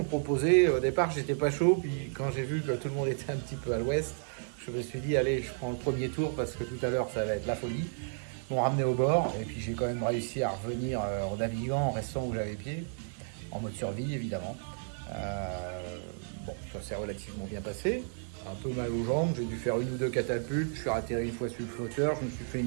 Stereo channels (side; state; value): left; silent; digital silence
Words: proposé, au départ j'étais pas chaud, puis quand j'ai vu que tout le monde était un petit peu à l'ouest, je me suis dit allez, je prends le premier tour parce que tout à l'heure ça va être la folie. Ils m'ont ramené au bord et puis j'ai quand même réussi à revenir en naviguant, en restant où j'avais pied, en mode survie évidemment. Bon, ça s'est relativement bien passé, un peu mal aux jambes, j'ai dû faire une ou deux catapultes, je suis atterri une fois sur le flotteur, je me suis fait